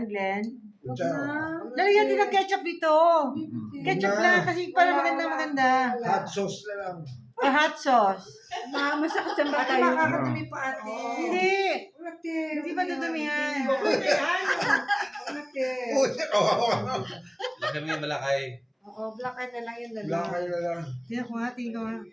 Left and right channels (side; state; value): both; identical; correlation 1.00